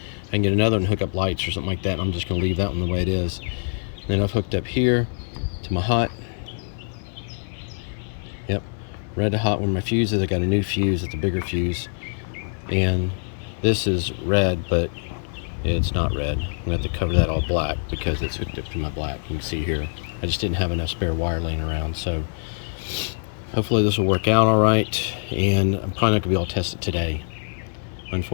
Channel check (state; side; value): silent; right; 62 dB below the other